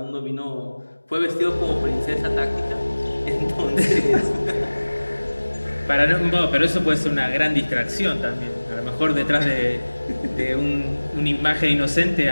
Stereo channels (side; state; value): both; inverted; correlation -1.00